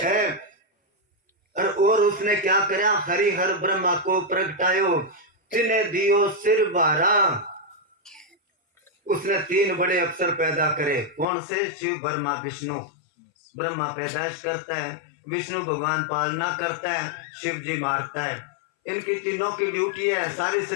और उसने क्या करा, हरिहर ब्रह्मा को प्रगटायो, तिन्हें दियो सिर बारा। उसने तीन बड़े अफसर पैदा करे, कौन से, शिव ब्रह्मा विष्णु। ब्रह्मा पैदाइश करता है, विष्णु भगवान पालना करता है, शिव जी मारता है। इनकी तीनों की ड्यूटी है, सारी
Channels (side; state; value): right; drops out; at 11.2 s